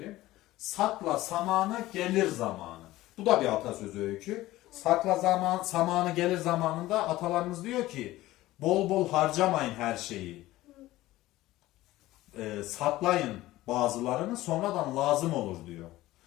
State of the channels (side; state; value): right; quieter; 16.8 dB